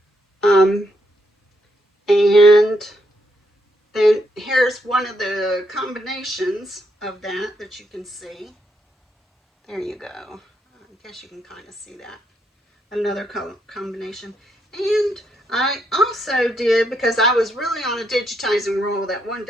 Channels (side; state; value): both; normal; correlation 0.77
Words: And then one of the combinations of that you can see. There you go. I guess you can kind of see that. Another color combination. And I also did, because I was really on a digitizing roll that one